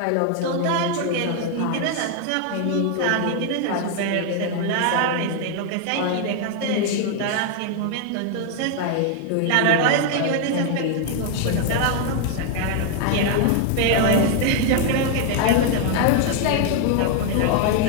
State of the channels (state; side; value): different; both; correlation 0.00